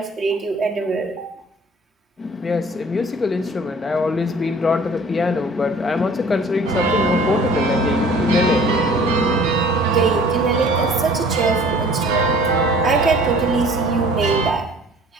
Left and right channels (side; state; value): both; normal; correlation 0.50